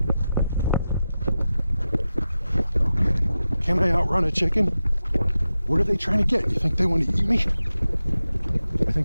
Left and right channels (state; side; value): inverted; both; correlation -0.92